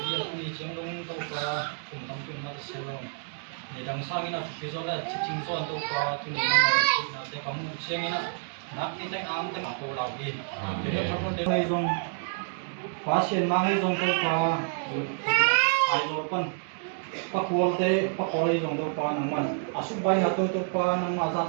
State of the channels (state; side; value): silent; left; 59 dB below the other